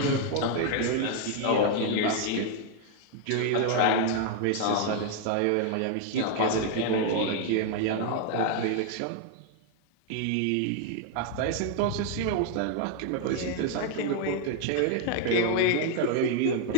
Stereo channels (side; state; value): both; different; correlation 0.00